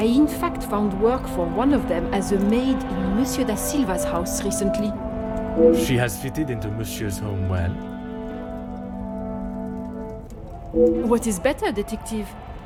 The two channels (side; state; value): both; identical; correlation 1.00